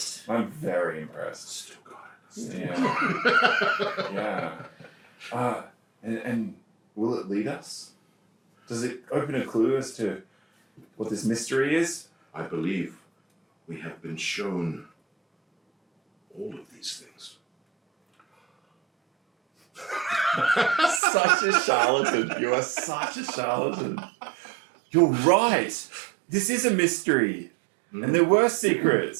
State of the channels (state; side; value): drops out; left; at 21.0 s